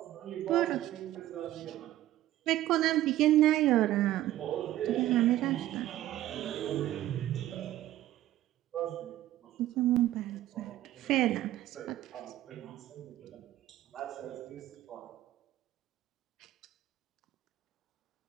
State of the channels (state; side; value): quieter; left; 14.1 dB